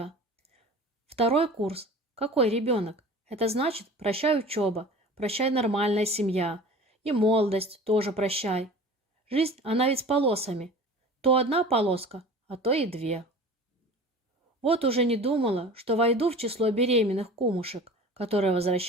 Второй курс. Какой ребенок? Это значит, прощай учеба, прощай нормальная семья. И молодость тоже прощай. Жизнь, она ведь с полосами. То одна полоска, а то и две. Вот уже не думала, что войду в число беременных кумушек, которые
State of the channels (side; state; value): both; normal; correlation 0.40